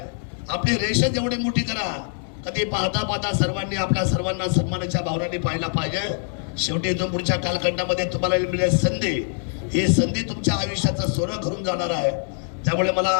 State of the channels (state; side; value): silent; right; 59 dB below the other